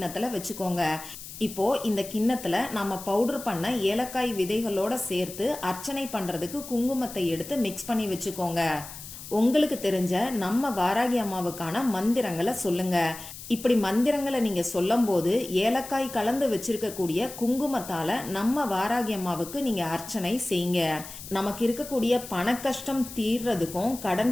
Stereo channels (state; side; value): noise; left; hiss, 13 dB below the sound